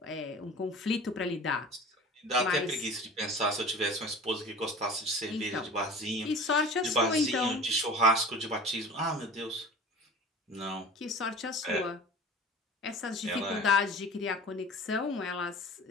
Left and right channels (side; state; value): both; normal; correlation 0.40